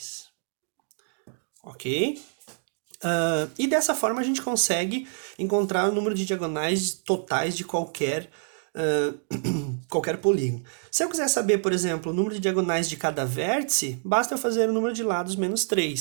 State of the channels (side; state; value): left; silent; 60 dB below the other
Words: Ok? E dessa forma a gente consegue encontrar o número de diagonais totais de qualquer polígono. Se eu quiser saber, por exemplo, o número de diagonais de cada vértice, basta fazer o número de lados menos